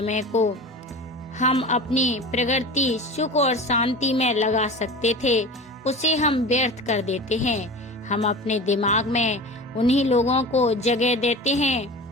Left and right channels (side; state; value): both; normal; correlation 0.33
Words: को हम अपनी प्रगति, सुख और शांति में लगा सकते थे, उसे हम व्यर्थ कर देते हैं। हम अपने दिमाग में उन्हीं लोगों को जगह देते